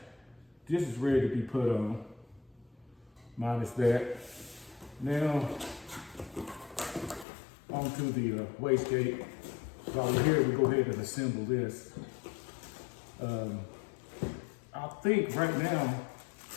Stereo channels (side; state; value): right; drops out; at 7.2 s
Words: this is ready to be put on, minus that. Now, onto the wastegate. So while we're here, we go ahead and assemble this. I think right now,